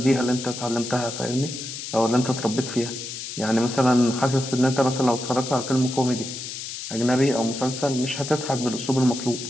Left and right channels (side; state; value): left; noise; hiss, 8 dB below the sound